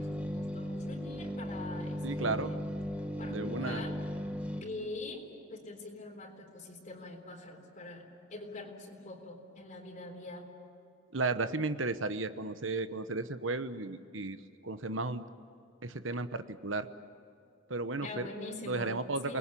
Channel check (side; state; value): both; normal; correlation 0.19